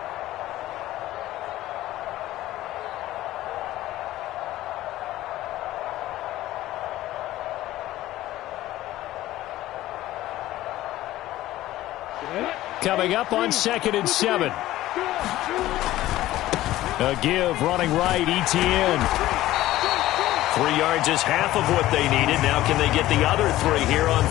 Coming up on 2nd and 7. A give running right, Etienne. 3 yards is half of what they needed. Now can they get the other 3 here on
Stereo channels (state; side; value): quieter; right; 15.4 dB